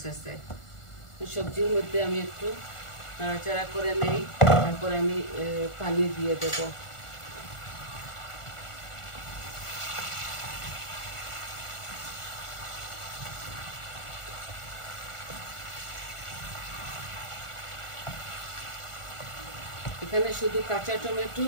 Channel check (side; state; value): right; late; 1.4 ms